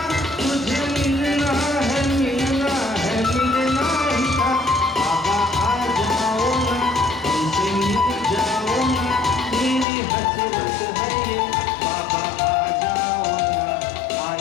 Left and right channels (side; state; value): right; drops out; at 9.9 s